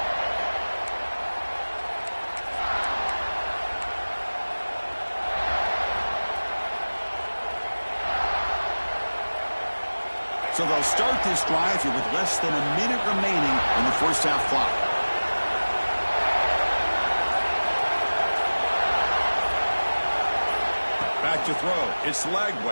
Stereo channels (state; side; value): inverted; both; correlation -1.00